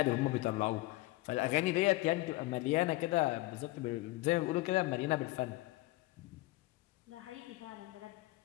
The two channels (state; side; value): quieter; right; 19.5 dB